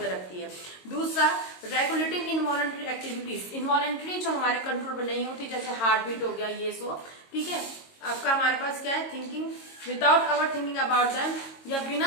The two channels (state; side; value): late; right; 22 ms